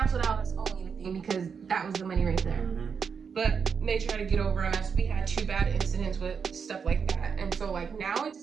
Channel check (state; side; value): quieter; left; 6.2 dB